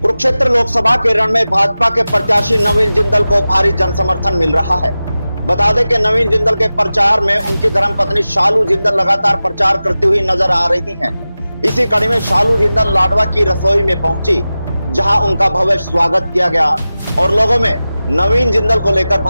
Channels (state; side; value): inverted; both; correlation -0.95